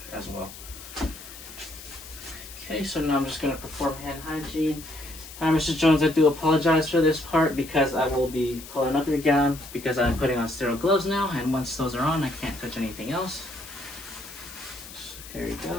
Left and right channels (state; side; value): noise; left; hiss, 15 dB below the sound